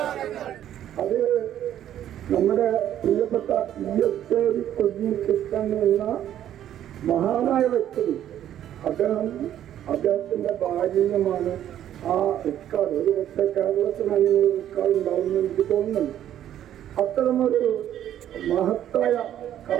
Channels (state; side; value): quieter; left; 11.2 dB